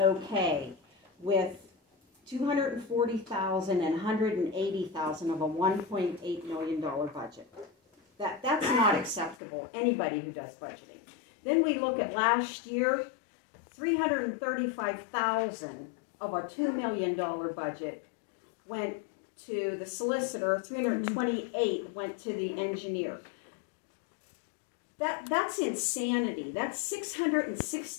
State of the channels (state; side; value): drops out; right; at 9.3 s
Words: with $240,000 and $180,000 of a $1.8 million budget. That's not acceptable, anybody who does budgeting. Then we look at last year, $335,000 of a $2 million budget went to the solicitor, $328,000 went to the engineer. That's insanity. That's